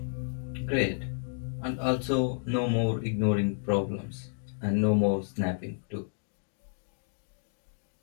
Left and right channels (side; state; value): right; silent; digital silence